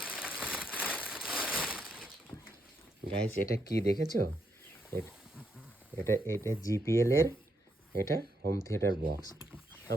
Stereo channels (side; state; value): both; normal; correlation 0.78